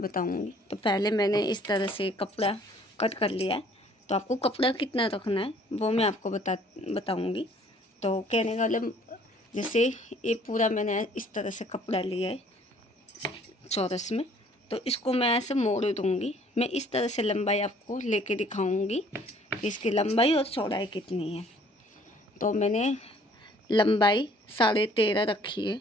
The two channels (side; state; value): both; normal; correlation 0.57